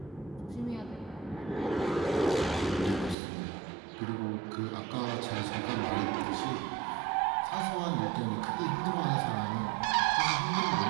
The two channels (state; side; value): drops out; left; at 3.2 s